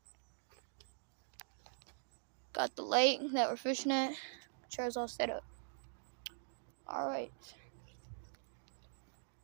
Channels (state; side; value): silent; left; digital silence